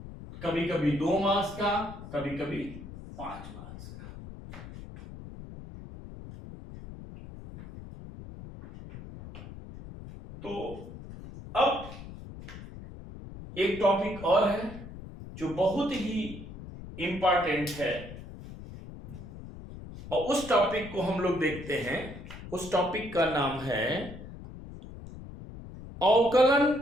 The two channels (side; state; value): left; noise; rumble, 13 dB below the sound